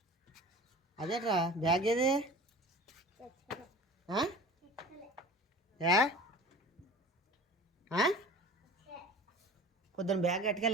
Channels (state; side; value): normal; both; correlation 0.39